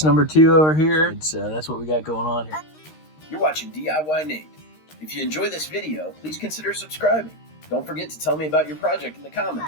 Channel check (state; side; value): late; right; 13 ms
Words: number 2 over here. That's what we got going on here. You're watching DIYNate. If you enjoy this video, please consider subscribing. Don't forget to tell me about your project in the